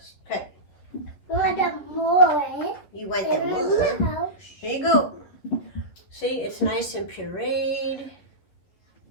Okay. I want more. You want the more? Here you go. See, it's nice and pureed. Is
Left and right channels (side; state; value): right; late; 11 ms